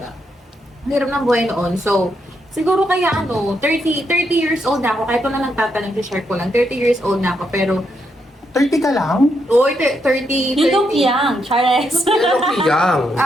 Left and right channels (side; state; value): both; normal; correlation 0.80